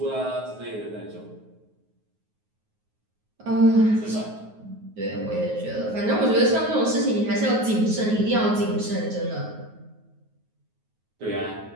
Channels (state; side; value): late; left; 9.4 ms